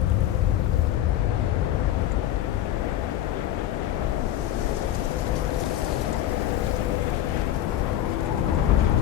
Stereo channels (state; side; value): quieter; right; 12.2 dB